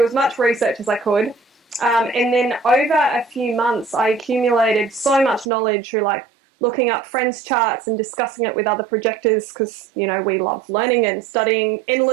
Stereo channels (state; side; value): drops out; left; at 5.5 s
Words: as much research as I could. And then over a few months, I accumulated so much knowledge through looking up friends' charts and discussing it with other projectors, because, we love learning and studying